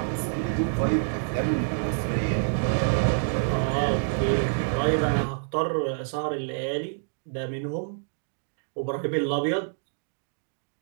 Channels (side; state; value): left; silent; digital silence